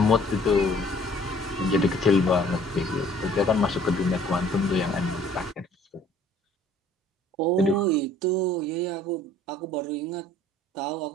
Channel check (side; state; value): both; normal; correlation 0.55